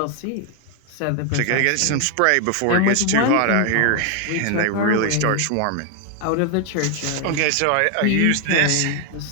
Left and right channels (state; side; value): different; both; correlation 0.00